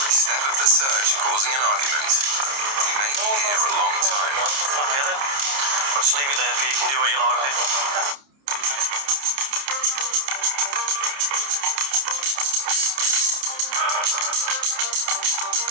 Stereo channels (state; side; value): late; left; 29 ms